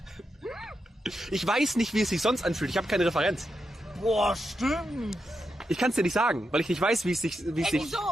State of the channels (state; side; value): normal; both; correlation 0.86